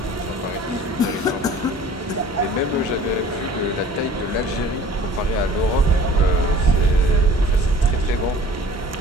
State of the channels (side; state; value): both; normal; correlation 0.47